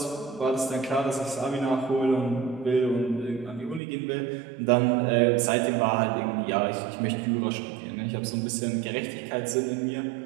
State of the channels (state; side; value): drops out; left; at 3.8 s